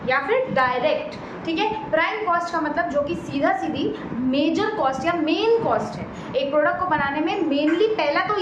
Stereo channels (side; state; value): both; identical; correlation 1.00